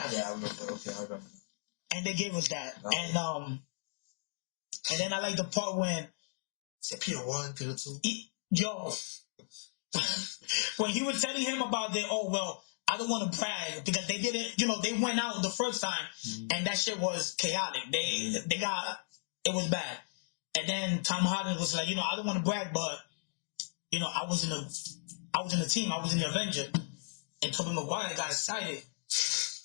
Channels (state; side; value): silent; right; digital silence